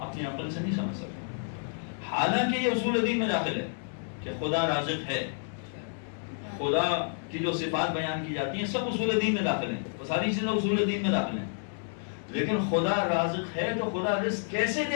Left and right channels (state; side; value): silent; right; 58 dB below the other